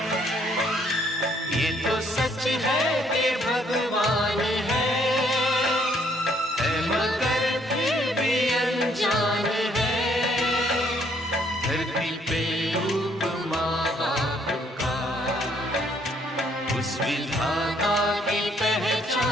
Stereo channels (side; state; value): both; normal; correlation 0.67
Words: ये तो सच है कि भगवान है मगर फिर भी अनजान है, धरती पे रूप माँ बाप का उस विधाता की